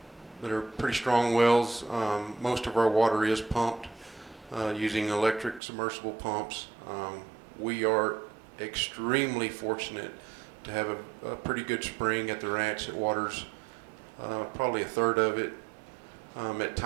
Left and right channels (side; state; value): left; drops out; at 5.6 s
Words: pretty strong wells. Most of our water is pumped using electric submersible pumps. We are extremely fortunate to have a pretty good spring at the ranch that waters probably a third of it. At